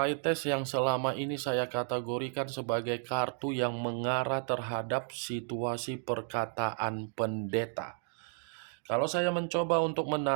yang selama ini saya kategorikan sebagai kartu yang mengarah terhadap situasi perkataan pendeta. Kalau saya mencoba untuk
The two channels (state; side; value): silent; left; 56 dB below the other